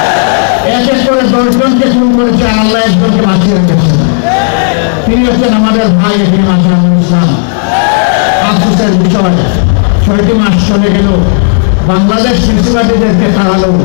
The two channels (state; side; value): silent; right; digital silence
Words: এক এক করে ১০ জনকে খুন করেছে, আর আল্লাহ একজনকে বাঁচিয়ে রেখেছেন। তিনি হচ্ছেন আমাদের ভাই এটিএম আজহারুল ইসলাম। আফসোসের বিষয়, ৬টি মাস চলে গেল, বাংলাদেশ ফেসিবাদীদেরকে তাড়ালো,